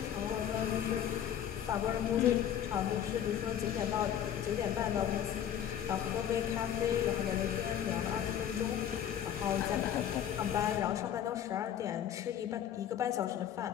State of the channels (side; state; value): right; quieter; 9.8 dB